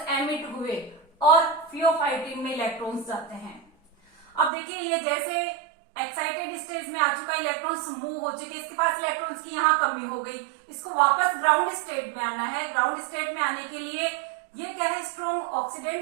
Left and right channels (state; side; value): drops out; left; at 4.5 s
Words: एमिट हुए और फियोफाइटिन में इलेक्ट्रॉन्स जाते हैं। अब देखिए ये जैसे एक्साइटेड स्टेज में आ चुका, इलेक्ट्रॉन्स मूव हो चुके, इसके पास इलेक्ट्रॉन्स की यहाँ कमी हो गई, इसको वापस ग्राउंड स्टेट में आना है। ग्राउंड स्टेट में आने के लिए ये क्या है? स्ट्रॉन्ग